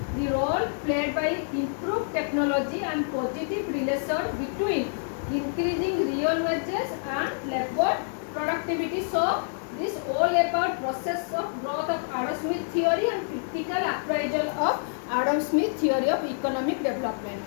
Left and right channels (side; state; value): right; silent; digital silence